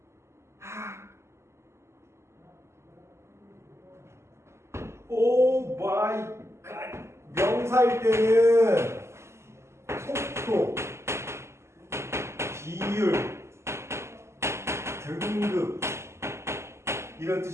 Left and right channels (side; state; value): left; late; 0.13 ms